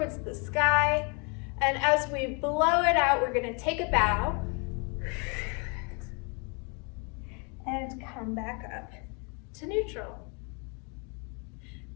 the sky, and as we blow it out, we're going to take a bow and come back up to neutral.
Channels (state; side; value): quieter; right; 34.0 dB